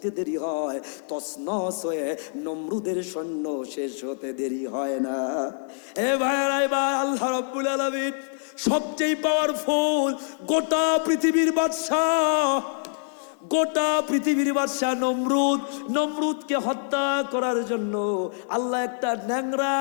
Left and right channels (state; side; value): silent; right; digital silence